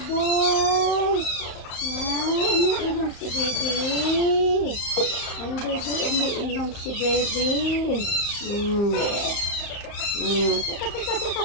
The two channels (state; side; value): late; right; 35 ms